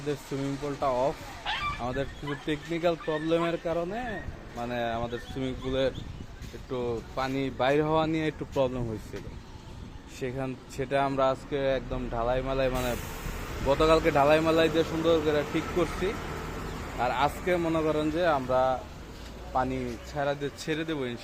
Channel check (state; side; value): identical; both; correlation 1.00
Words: সুইমিং পুলটা অফ। আমাদের কিছু টেকনিক্যাল প্রবলেমের কারণে আমাদের সুইমিং পুলের একটু পানি বাইর হওয়া নিয়ে একটু প্রবলেম হয়েছিল। সেটা আমরা আজকে একদম ঢালাই মালাই গতকালকে ঢালাই মালাই দিয়ে সুন্দর করে ঠিক করছি। আর আজকে মনে করেন যে আমরা পানি ছেড়ে দেবো